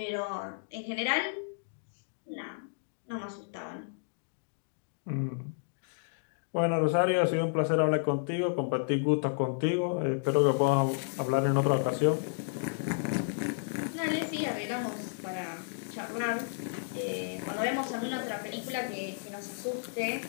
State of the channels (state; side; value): silent; right; digital silence